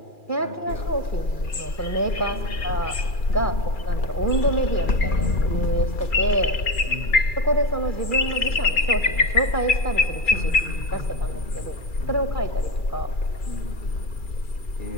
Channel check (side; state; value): right; late; 2.4 ms